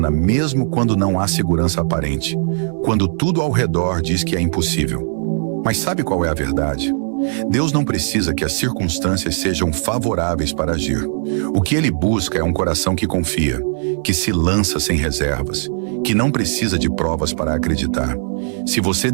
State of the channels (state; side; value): silent; left; digital silence